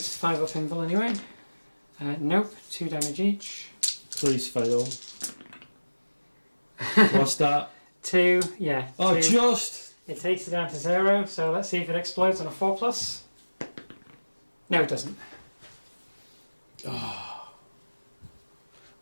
5 up invul anyway. Nope, 2 damage each. Please fail. What's that? 2, yeah. Oh, 2. just! It takes it down to 0, so let's see if it explodes on a 4+. No, it doesn't. Oh.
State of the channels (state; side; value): inverted; both; correlation -1.00